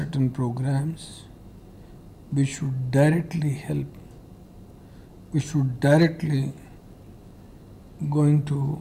programs which should directly help, which should directly going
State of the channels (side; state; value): both; identical; correlation 1.00